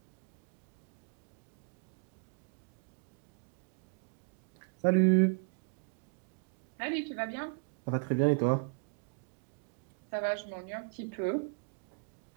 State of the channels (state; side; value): quieter; left; 33.5 dB